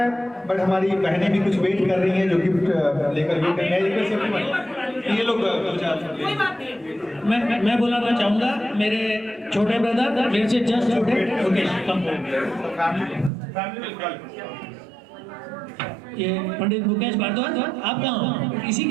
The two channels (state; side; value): drops out; left; at 13.3 s